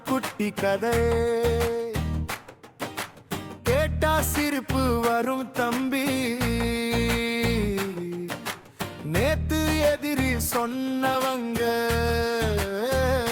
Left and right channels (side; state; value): both; identical; correlation 1.00